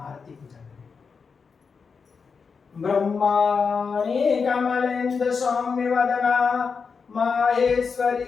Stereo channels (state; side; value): quieter; right; 5.4 dB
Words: आरती पूजा करें। ब्रह्माणी कमलेन्द्र सौम्य वदना